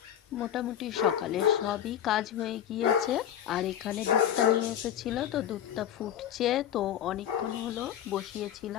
মোটামুটি সকালে সবই কাজ হয়ে গিয়েছে। আর এখানে দুধটা নিয়ে এসেছিল, তো দুধটা ফুটছে, তো অনেকক্ষণ হলো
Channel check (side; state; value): right; quieter; 10.5 dB